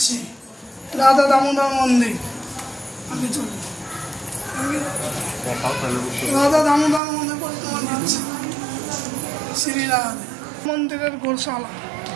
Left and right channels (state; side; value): drops out; left; at 7.0 s